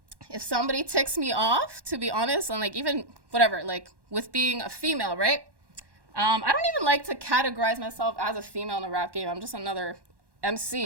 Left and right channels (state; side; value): late; left; 1.1 ms